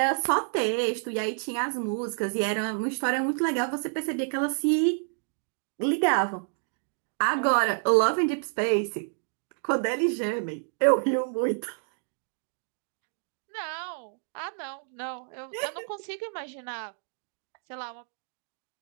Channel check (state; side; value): silent; left; 59 dB below the other